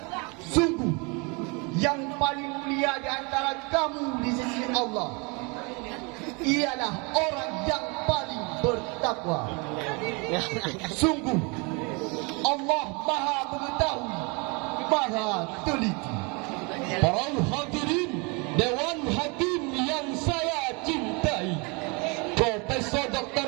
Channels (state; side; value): quieter; left; 30.2 dB